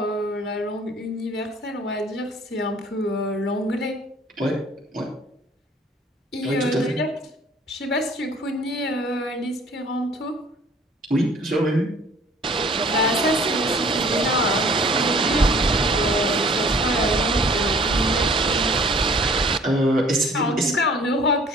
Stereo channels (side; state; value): both; normal; correlation 0.53